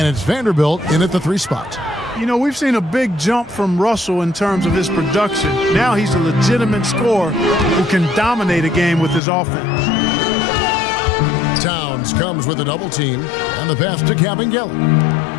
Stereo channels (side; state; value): right; drops out; at 9.2 s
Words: it's Vanderbilt in at the 3 spot. You know, we've seen a big jump from Russell in terms of his production. Now he's a legitimate scorer who can dominate a game with his offense. Towns comes with a double team, and the pass to Kabengele.